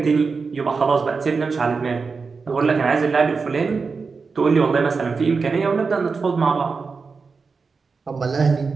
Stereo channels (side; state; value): left; quieter; 4.8 dB